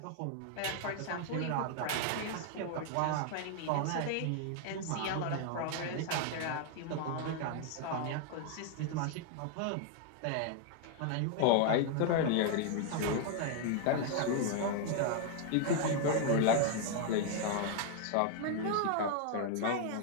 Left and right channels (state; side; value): different; both; correlation 0.00